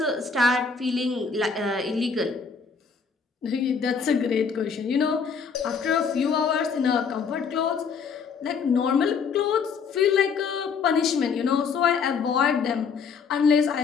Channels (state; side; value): quieter; right; 5.7 dB